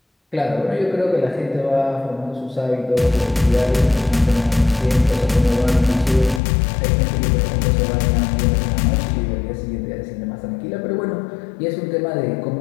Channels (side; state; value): right; drops out; at 6.4 s